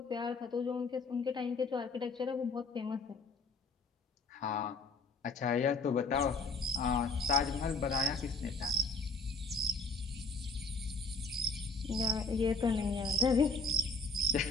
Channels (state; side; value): quieter; right; 3.2 dB